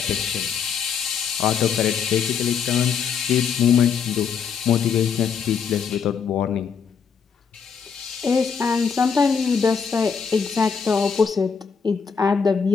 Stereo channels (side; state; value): right; quieter; 6.5 dB